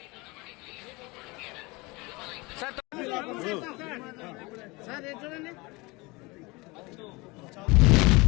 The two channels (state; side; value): quieter; right; 24.7 dB